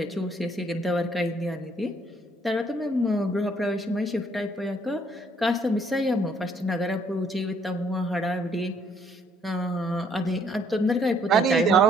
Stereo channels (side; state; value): both; normal; correlation 0.65